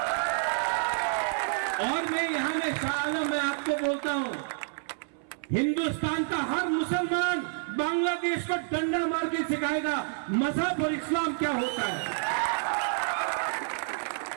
और मैं यहां में शाह आलम मैं आपको बोलता हूं, हिंदुस्तान का हर मुसलमान बांग्लादेश को डंडा मार के सिखाएगा मजहब और इस्लाम क्या होता है।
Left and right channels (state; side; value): silent; left; 59 dB below the other